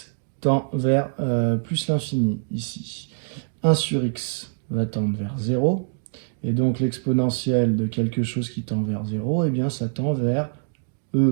tend vers plus l'infini, ici, 1 sur x va tendre vers 0. Et donc l'exponentielle de quelque chose qui tend vers 0, eh bien ça tend vers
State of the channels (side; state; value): left; silent; digital silence